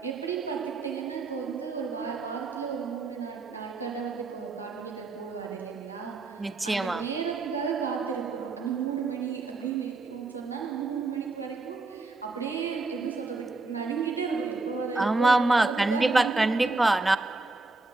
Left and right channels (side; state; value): left; quieter; 3.5 dB